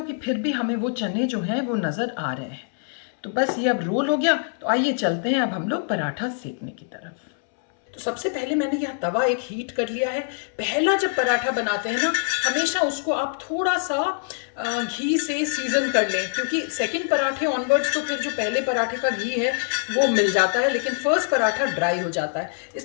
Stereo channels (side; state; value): right; silent; 62 dB below the other